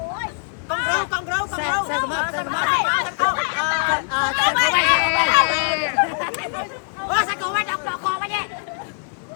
con râu xe mập xe cổ bay đọc đọc con bay nhé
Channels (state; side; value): silent; right; digital silence